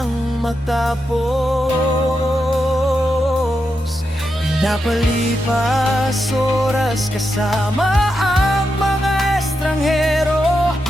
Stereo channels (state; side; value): normal; both; correlation 0.86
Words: matapos. Pinapalipas oras kasama ang mga estranghero,